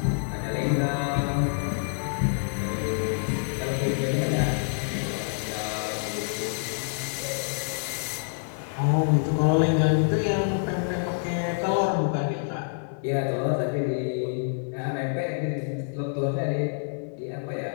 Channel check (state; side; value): silent; right; 60 dB below the other